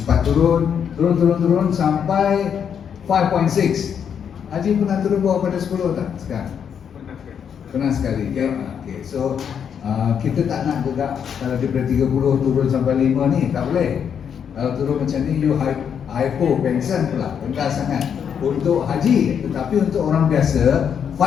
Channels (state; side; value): quieter; right; 7.8 dB